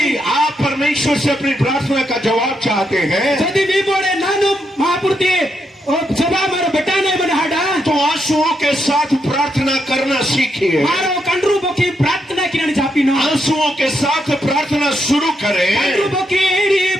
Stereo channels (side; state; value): both; normal; correlation 0.80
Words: आप परमेश्वर से अपनी प्रार्थना का जवाब चाहते हैं, यदि भी बोले नानु महापुरुष और जवाब मेरे बेटा ने बना हटा तो आंसुओं के साथ प्रार्थना करना सीखिए। मारो कंड्रू बखी प्रार्थना किने चापी नो आंसुओं के साथ प्रार्थना शुरू करें, कंड्रू बखी एडी